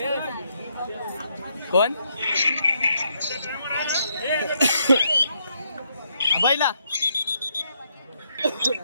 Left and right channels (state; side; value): inverted; both; correlation -0.76